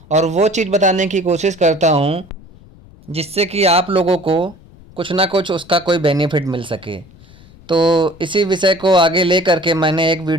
और वो चीज़ बताने की कोशिश करता हूं जिससे कि आप लोगों को कुछ ना कुछ उसका कोई बेनिफिट मिल सके। तो इसी विषय को आगे ले करके मैंने एक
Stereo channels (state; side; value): noise; left; rumble, 24 dB below the sound